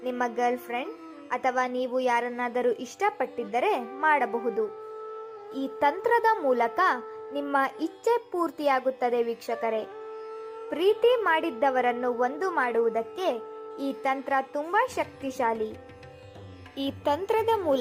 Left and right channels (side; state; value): both; identical; correlation 1.00